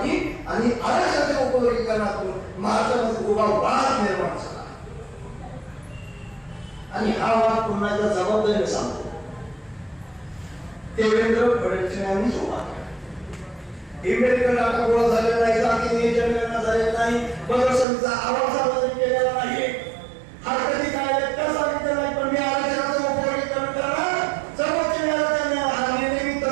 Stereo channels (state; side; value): drops out; left; at 17.9 s